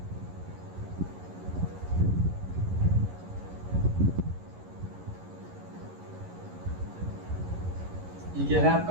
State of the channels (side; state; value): left; late; 11 ms